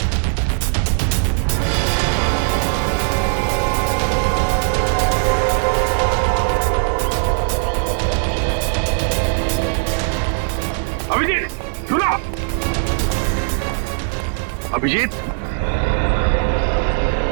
अभिजीत सुनो। अभिजीत,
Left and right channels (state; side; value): silent; left; 67 dB below the other